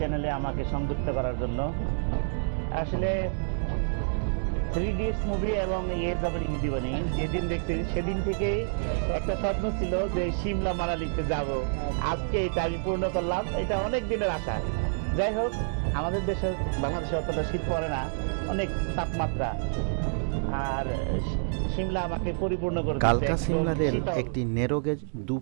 আমাকে সংযুক্ত করার জন্য। আসলে 3 Idiots মুভি এবং ये जबर हिंदी बनी যেদিন দেখছি সেদিন থেকেই একটা স্বপ্ন ছিল যে সিমলা মানালিতে যাব। আজকে এটা আমি পূর্ণ করলাম। এটা অনেক দিনের আশা। যাই হোক, আমাদের দেশে বাংলাদেশে অতটা শীত পড়ে না, অনেক তাপমাত্রা, আর সিমলা আমাকে পরিপূর্ণ করে দিয়েছে। কালকা সিমলা রেল একটি ন্যারোগেজ 2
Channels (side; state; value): left; silent; digital silence